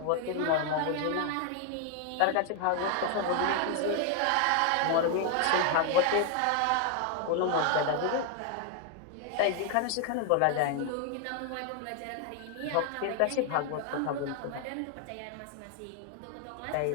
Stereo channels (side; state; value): both; different; correlation 0.00